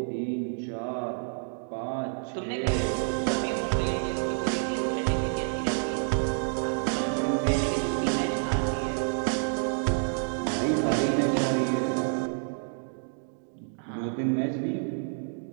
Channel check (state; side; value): silent; left; digital silence